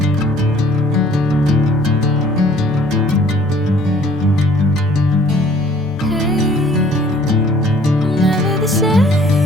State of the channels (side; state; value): right; noise; hum, 26 dB below the sound